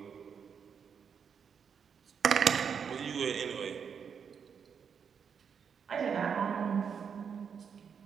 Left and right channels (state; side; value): quieter; left; 6.9 dB